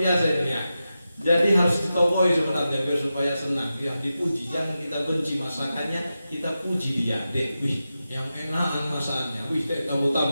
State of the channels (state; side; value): inverted; both; correlation -0.91